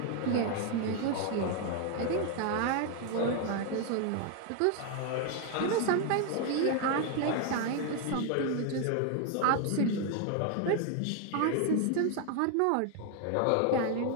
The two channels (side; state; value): both; different; correlation 0.01